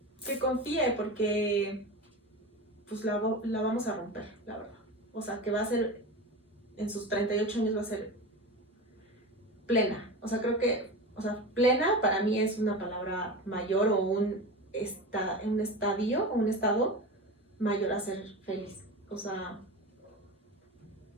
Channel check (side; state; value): both; normal; correlation 0.27